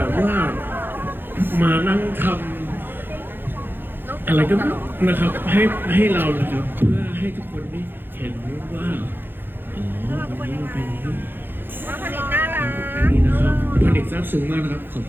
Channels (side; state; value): left; late; 0.099 ms